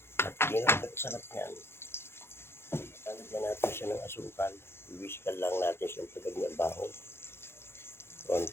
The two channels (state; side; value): late; right; 0.12 ms